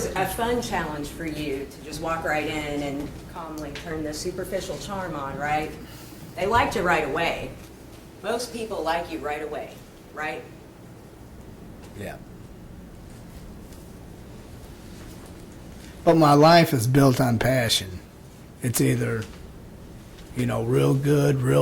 a fun challenge for you to just walk right in and calmly turn the superficial charm on, right? They liked you right away. Most people like you right away, right? yeah. But my life is built on passion. It's either, you know, real good,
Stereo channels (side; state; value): both; identical; correlation 1.00